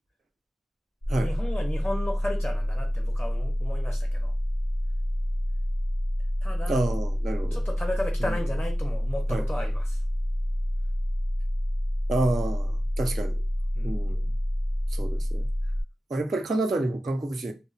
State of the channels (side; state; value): both; normal; correlation 0.96